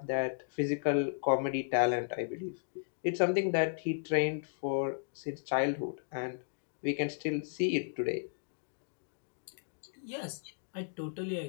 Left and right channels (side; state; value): right; silent; digital silence